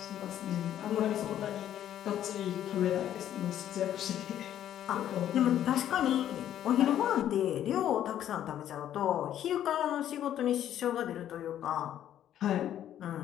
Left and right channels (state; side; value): quieter; right; 11.1 dB